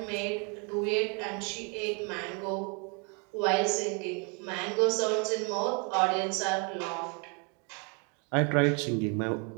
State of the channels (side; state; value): left; quieter; 34.7 dB